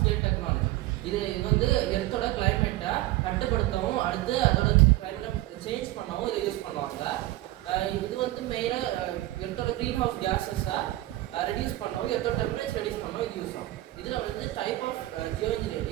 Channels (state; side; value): quieter; left; 16.8 dB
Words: டெக்னாலஜி. இது வந்து எர்த்தோட கிளைமேட்டை கட்டுப்படுத்தவும் அடுத்து அதோட கிளைமேட்டை சேஞ்ச் பண்ணவும் இதை யூஸ் பண்ணுவாங்க. இது வந்து மெயினாக எர்த்தோட க்ரீன் ஹவுஸ் கேஸஸை ரெடியூஸ் பண்ணவும் எர்த்தோட டெம்பரேச்சர் ரெடியூஸ் பண்ணவும் இது யூஸ் ஆகும். இதில் வந்து type of